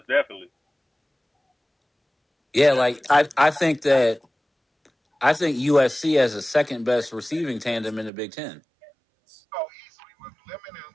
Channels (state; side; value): drops out; left; at 8.1 s